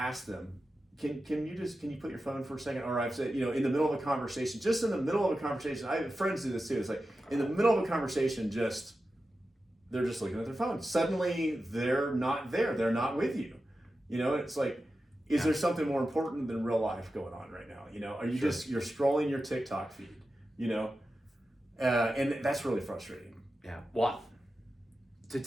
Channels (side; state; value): both; normal; correlation 0.92